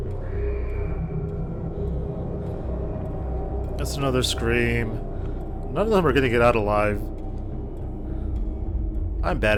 That's another scream. None of them are gonna get out alive. I'm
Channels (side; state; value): both; identical; correlation 1.00